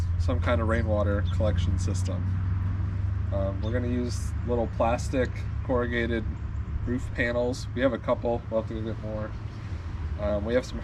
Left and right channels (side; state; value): both; identical; correlation 1.00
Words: some kind of rainwater collection system. We're going to use little plastic corrugated roof panels. We have a couple, we'll have to go get more. We have some